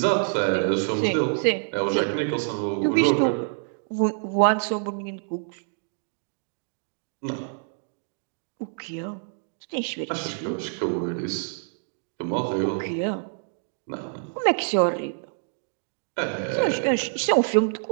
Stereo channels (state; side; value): silent; left; digital silence